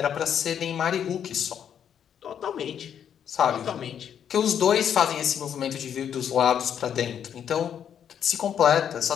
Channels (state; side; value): quieter; right; 8.8 dB